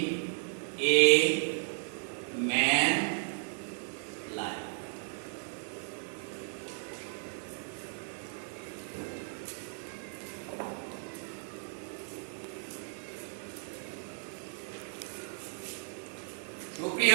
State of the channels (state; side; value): silent; left; 55 dB below the other